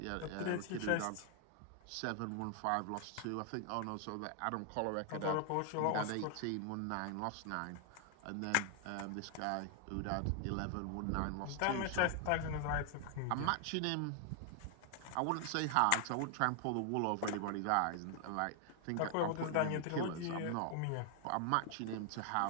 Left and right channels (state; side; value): different; both; correlation 0.00